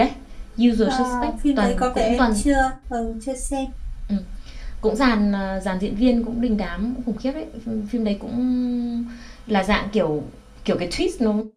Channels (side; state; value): both; identical; correlation 1.00